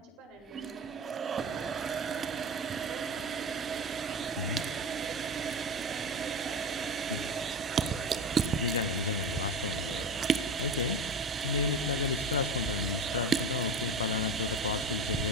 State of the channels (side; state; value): both; normal; correlation 0.24